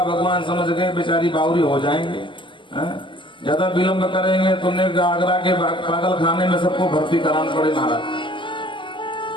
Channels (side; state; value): right; late; 0.24 ms